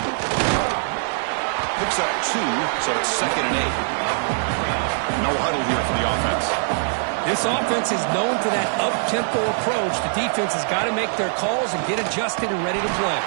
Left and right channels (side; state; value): left; silent; 61 dB below the other